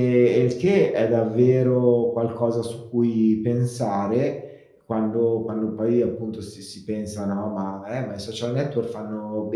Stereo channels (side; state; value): both; identical; correlation 1.00